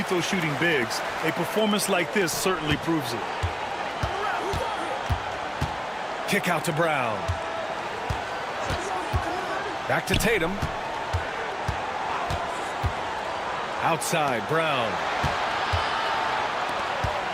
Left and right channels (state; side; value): identical; both; correlation 1.00